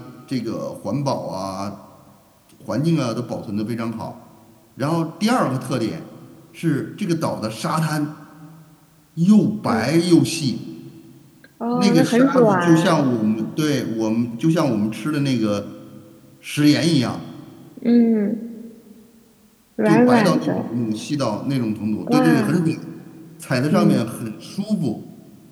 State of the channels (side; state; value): both; identical; correlation 1.00